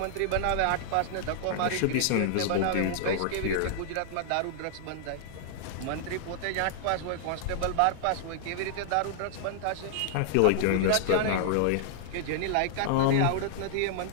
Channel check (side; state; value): both; different; correlation -0.01